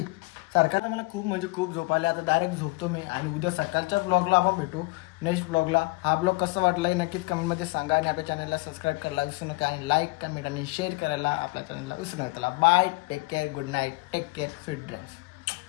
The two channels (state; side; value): quieter; right; 24.2 dB